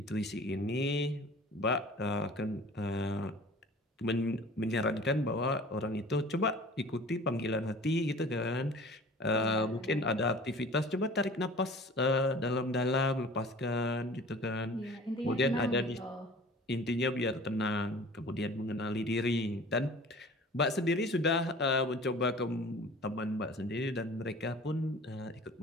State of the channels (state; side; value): normal; both; correlation 0.44